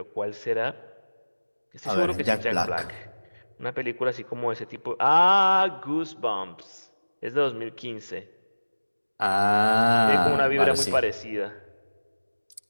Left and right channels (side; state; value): both; inverted; correlation -1.00